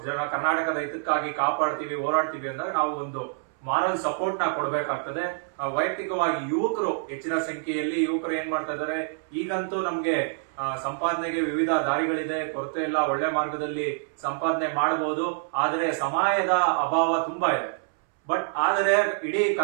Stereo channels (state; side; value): silent; left; 61 dB below the other